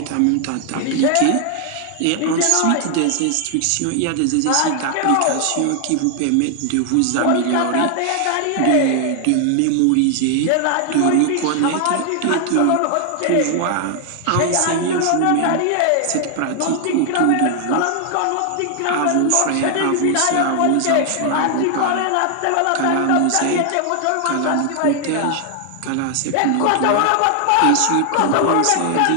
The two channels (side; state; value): both; different; correlation 0.00